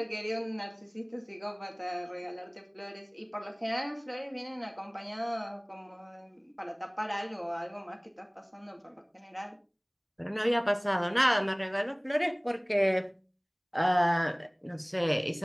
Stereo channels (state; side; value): identical; both; correlation 1.00